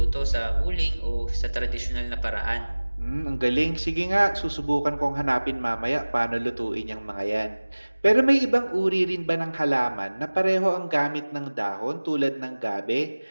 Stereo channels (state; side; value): inverted; both; correlation -1.00